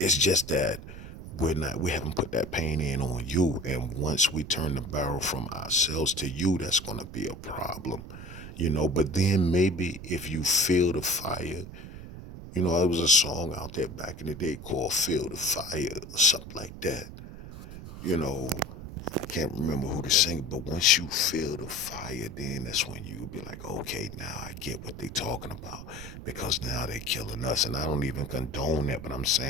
just that we haven't put that pain in on you. And once we turn the barrel from ourselves to you, that's gonna be a problem. But then maybe if you feel the fire, there was a song out there back in the day called Feel the Fire or something like that. You know, I can't remember who to sing, but once you feel the fire, then that's when you be like, okay, now I get what they talking about, because now they killing us. And I don't even condone that, but I'm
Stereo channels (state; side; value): noise; right; rumble, 12 dB below the sound